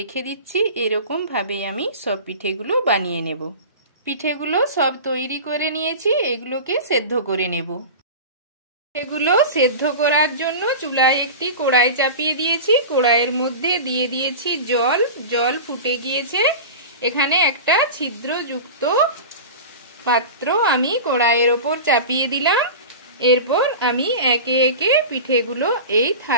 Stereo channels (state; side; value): inverted; both; correlation -0.30